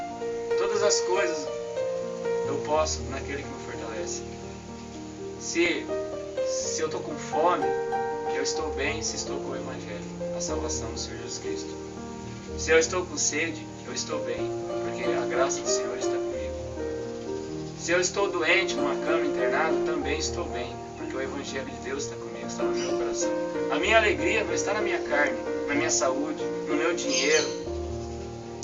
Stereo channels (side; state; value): both; identical; correlation 1.00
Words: Todas as coisas eu posso naquele que me fortalece. Se eu estou com fome, eu estou bem se estou com o Evangelho, a salvação do Senhor Jesus Cristo. Se eu estou com sede, eu estou bem, porque a graça do Senhor está comigo. Se eu estou doente numa cama internado, também estou bem, porque o Evangelho de Deus está comigo, está no meu coração. A minha alegria não está na minha carne, na minha saúde, no meu dinheiro,